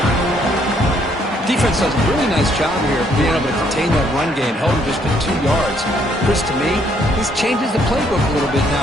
Defense does a really nice job here of being able to contain that run game, held him just to 2 yards. Chris, to me, this changes the playbook a little bit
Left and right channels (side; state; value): both; normal; correlation 0.68